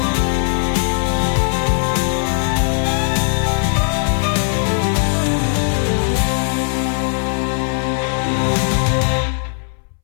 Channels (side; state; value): right; silent; 66 dB below the other